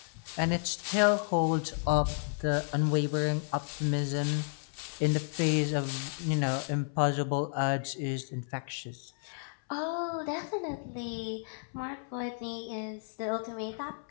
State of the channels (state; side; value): silent; right; 56 dB below the other